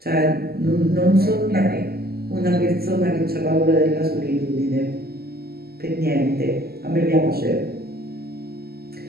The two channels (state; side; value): late; left; 0.45 ms